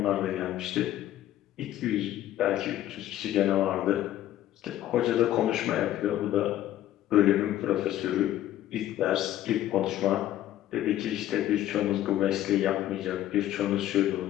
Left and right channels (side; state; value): right; quieter; 13.1 dB